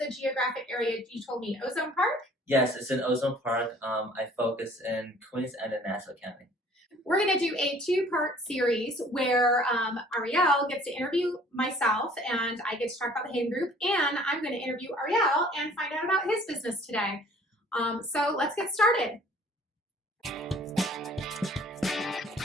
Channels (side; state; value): both; normal; correlation 0.53